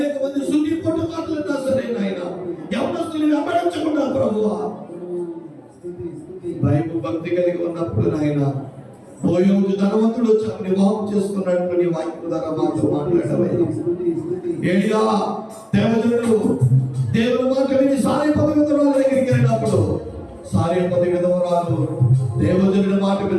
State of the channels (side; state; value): both; identical; correlation 1.00